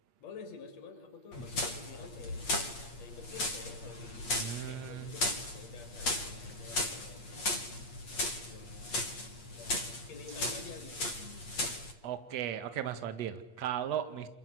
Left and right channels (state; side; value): late; right; 8.4 ms